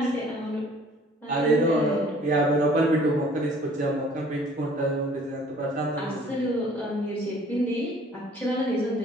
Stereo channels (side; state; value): both; normal; correlation 0.54